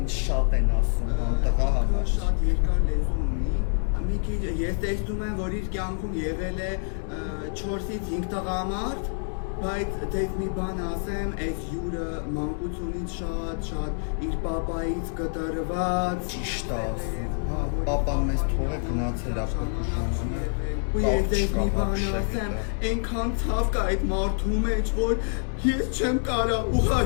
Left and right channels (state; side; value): silent; right; 60 dB below the other